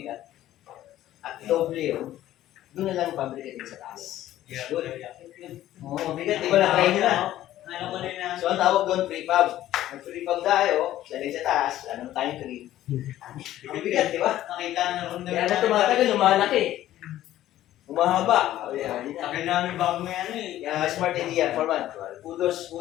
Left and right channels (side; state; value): right; quieter; 13.5 dB